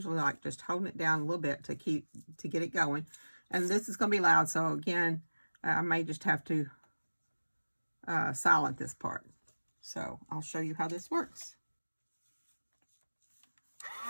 like just holding it down a little bit to get it going. And this is going to be loud, so again, I may just have to silent this part. So I'll show you how this works.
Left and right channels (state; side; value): inverted; both; correlation -1.00